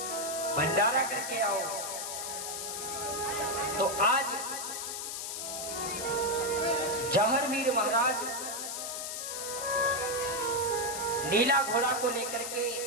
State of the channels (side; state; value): left; noise; hiss, 5 dB below the sound